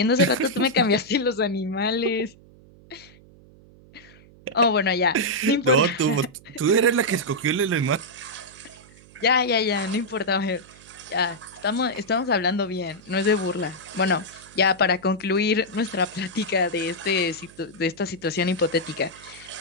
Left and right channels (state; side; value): noise; right; hum, 24 dB below the sound